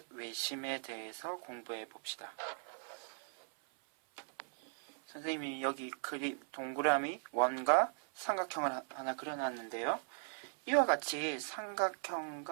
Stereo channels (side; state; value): left; silent; 52 dB below the other